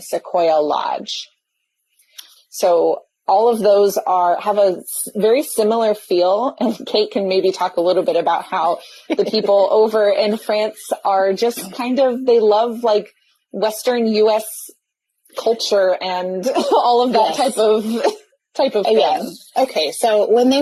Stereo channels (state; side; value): identical; both; correlation 1.00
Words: Lodge. So all of those have a very similar feel, and Kate can maybe talk a little bit about how the people over in France are just kind of, they love like Western US culture and all of that type of thing. Yeah. Okay, so when they